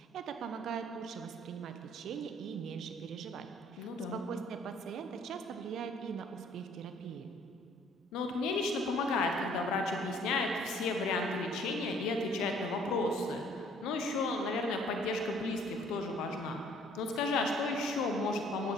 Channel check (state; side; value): normal; both; correlation 0.58